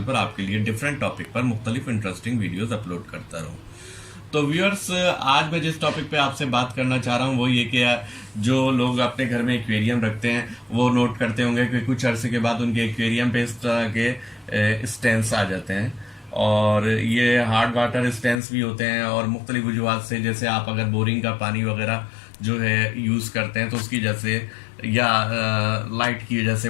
पर आपके लिए डिफरेंट टॉपिक पर मुख्तलिफ इंटरेस्टिंग वीडियोस अपलोड करता रहूं। तो व्यूअर्स, आज मैं जिस टॉपिक पे आपसे बात करना चाह रहा हूँ वो ये कि जो लोग अपने घर में एक्वेरियम रखते हैं वो नोट करते होंगे कि कुछ अरसे के बाद उनके एक्वेरियम पे इस तरह के स्टेंस आ जाते हैं। और ये हार्ड वाटर स्टेंस भी होते हैं और मुख्तलिफ वजूहत से, जैसे आप अगर बोरिंग का पानी वगैरह जो है यूज़ करते हैं तो उसकी वजह से या लाइट की वजह से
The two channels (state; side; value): drops out; right; at 18.4 s